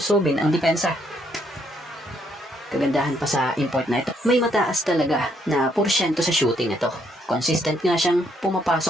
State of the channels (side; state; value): both; normal; correlation 0.72